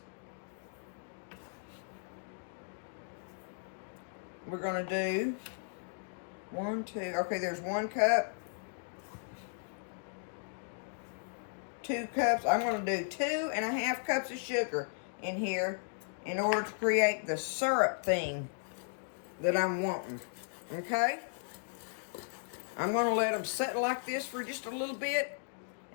we're going to do 1, 2. Okay, there's 1 cup. 2 cups. I'm going to do 2.5 cups of sugar in here in order to create the syrup thing that I'm wanting. Okay? I'm going to let them sit like this for just a little bit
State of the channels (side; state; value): right; silent; digital silence